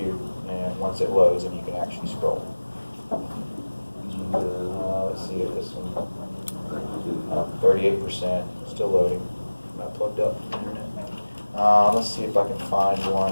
it loads and you can actually scroll. Let's see if this one, 38%, still loading. Not plugged up. Let's see if I can find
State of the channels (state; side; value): inverted; both; correlation -1.00